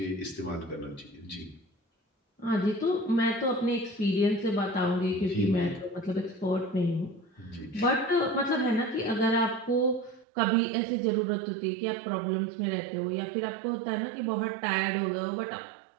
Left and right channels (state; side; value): drops out; left; at 10.2 s